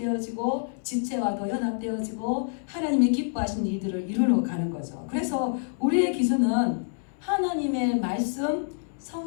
지체와도 연합되어지고 하나님이 기뻐하시는 이들을 이루러 가는 거죠. 그래서 우리의 기준은 하나님의 말씀,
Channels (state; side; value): silent; right; 60 dB below the other